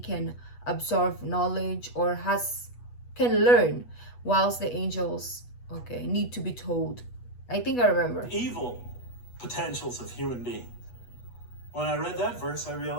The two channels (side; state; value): right; late; 8.2 ms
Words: can absorb knowledge or can learn, whilst the angels, okay, need to be told. I think I remember. Evil potentials of human beings. When I read that verse, I